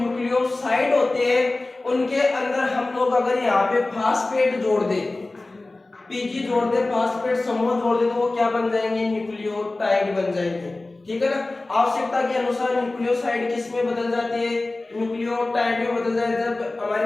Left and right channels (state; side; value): quieter; right; 3.0 dB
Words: होते हैं उनके अंदर हम लोग अगर यहाँ पे फास्फेट जोड़ दे, पीजी जोड़ दे, फास्फेट समूह जोड़ दे, तो वो क्या बन जाएंगे न्यूक्लियोटाइड बन जाएंगे, ठीक है ना। आवश्यकता के अनुसार न्यूक्लियोसाइड किस में बदल जाती है, न्यूक्लियोटाइड में बदल जाती है। जब हमारी